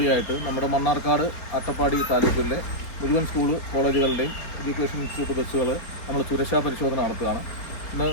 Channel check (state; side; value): late; right; 3.9 ms